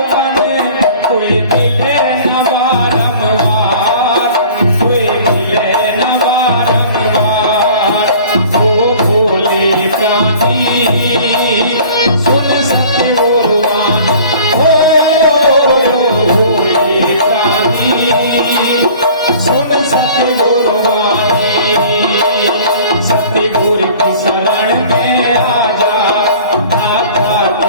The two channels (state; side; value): inverted; both; correlation -0.47